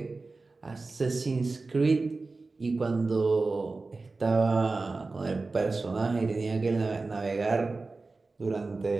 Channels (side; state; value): left; quieter; 3.7 dB